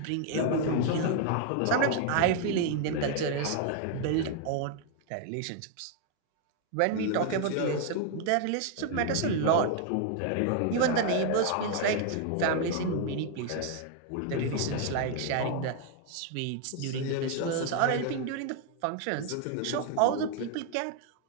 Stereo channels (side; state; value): both; different; correlation 0.00